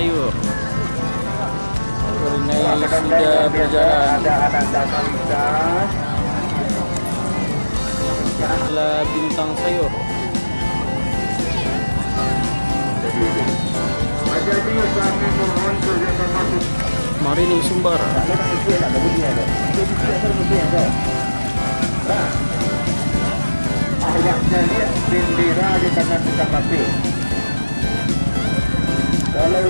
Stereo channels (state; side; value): inverted; both; correlation -1.00